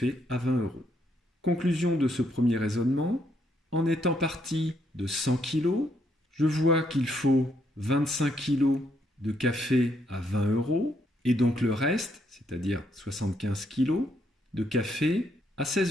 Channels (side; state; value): both; normal; correlation 0.74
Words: à 20 €. Conclusion de ce premier raisonnement, en étant parti de 100 kg, je vois qu'il faut 25 kg de café à 20 € et donc le reste, c'est-à-dire 75 kg de café à